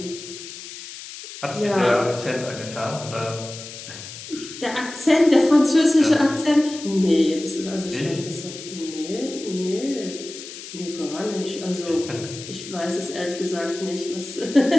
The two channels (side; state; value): left; noise; hiss, 12 dB below the sound